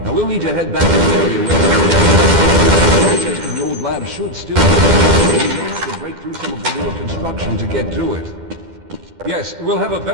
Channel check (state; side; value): late; left; 12 ms